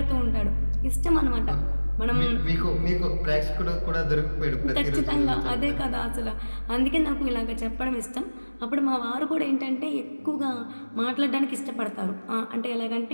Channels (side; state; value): both; inverted; correlation -1.00